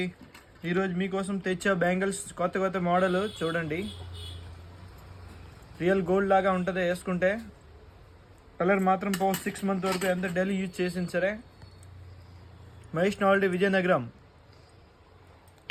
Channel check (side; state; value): both; identical; correlation 1.00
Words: ఈరోజు మీకోసం తెచ్చా బ్యాంగిల్స్ కొత్త మోడల్ చూడండి. రియల్ గోల్డ్ లాగా ఉంటుంది వేసుకుంటే. కలర్ మాత్రం 6 మంత్ వరకు ఎంత డైలీ యూజ్ చేసింది సరే. మహేష్ నాల్డీ విజయనగరం